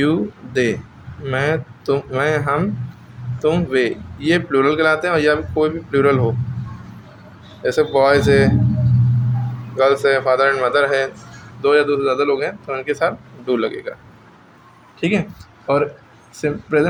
दे, मैं, तुम, मैं, हम, तुम, वे, ये प्लूरल कहलाते हैं। और या कोई भी प्लूरल हो, जैसे बॉयज़ है, गर्ल्स है, फादर एंड मदर है, दो या दो से ज़्यादा लोग हैं, तो उनके साथ डू लगेगा, ठीक है। और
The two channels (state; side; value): identical; both; correlation 1.00